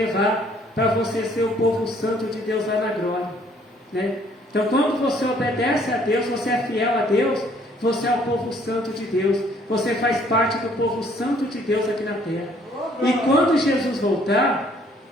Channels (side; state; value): both; normal; correlation 0.62